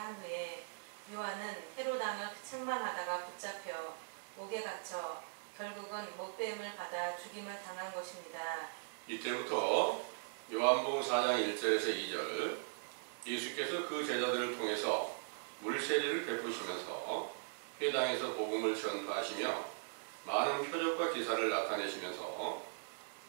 후에 요한은 헤롯 왕을 책망하다가 붙잡혀 옥에 갇혀 결국은 못배임을 받아 죽임을 당한 것입니다. 이때부터 요한복음 4장 1절에서 2절 예수께서 그 제자들을 통해서 물세례를 베푸시면서 회당에서 복음을 전파하시며 많은 표적과 기사를 나타내시면서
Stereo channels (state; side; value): silent; left; digital silence